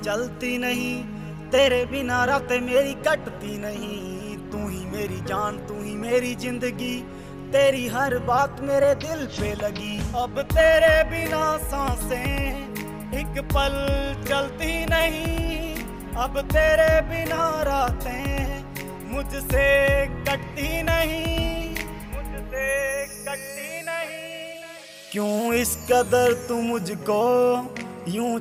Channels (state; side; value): identical; both; correlation 1.00